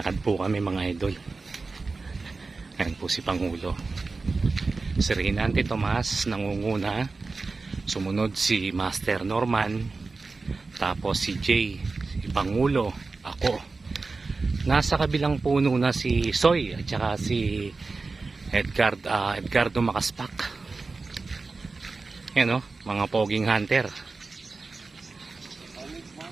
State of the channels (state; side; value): quieter; left; 3.9 dB